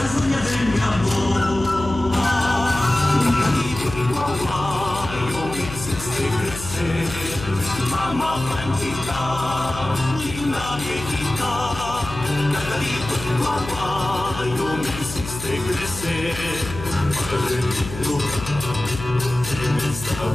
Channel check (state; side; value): noise; left; hum, 11 dB below the sound